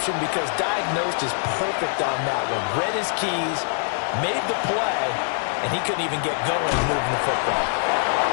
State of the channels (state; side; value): silent; right; digital silence